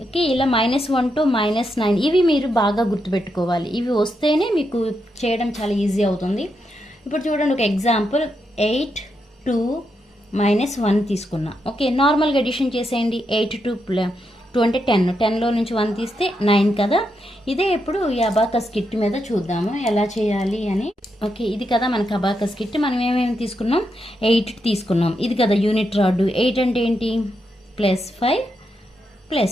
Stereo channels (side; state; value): both; normal; correlation 0.83